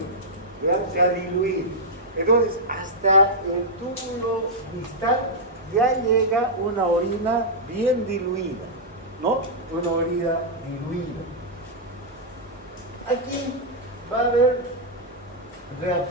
¿Vean? Se ha diluido. Entonces, hasta el túbulo distal ya llega una orina bien diluida, ¿no? Una orina diluida. Aquí va a haber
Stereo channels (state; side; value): normal; both; correlation -0.07